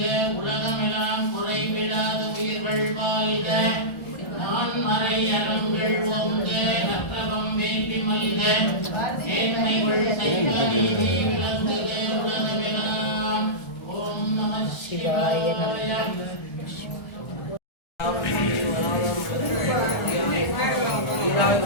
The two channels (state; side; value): late; right; 1.4 ms